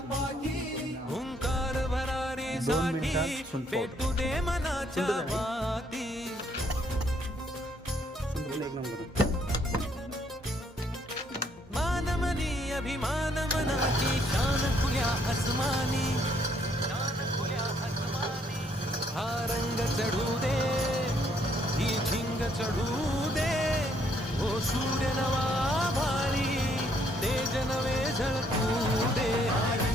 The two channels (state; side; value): normal; both; correlation 0.69